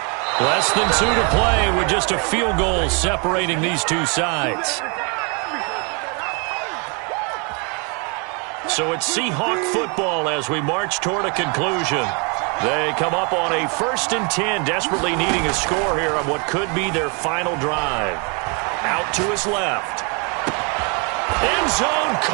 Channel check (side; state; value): left; quieter; 33.9 dB